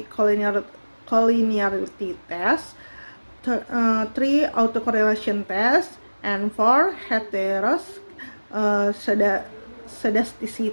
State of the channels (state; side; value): inverted; both; correlation -1.00